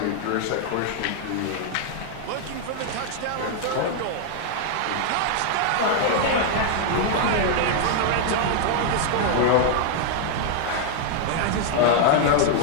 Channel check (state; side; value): different; both; correlation 0.00